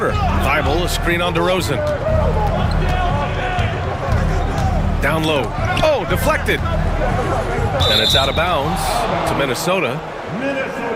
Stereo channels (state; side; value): identical; both; correlation 1.00